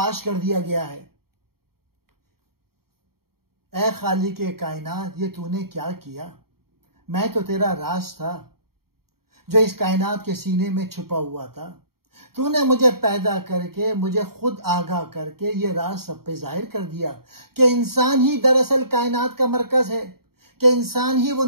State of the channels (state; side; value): late; left; 0.94 ms